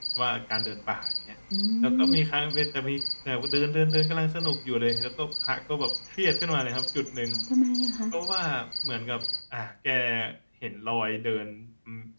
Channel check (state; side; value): inverted; both; correlation -1.00